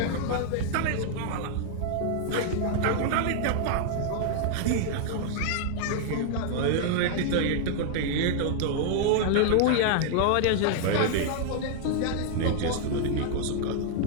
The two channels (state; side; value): different; both; correlation 0.00